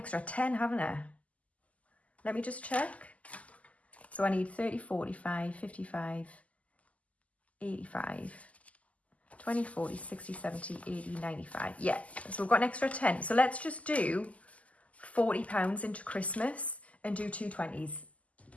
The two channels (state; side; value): late; right; 0.070 ms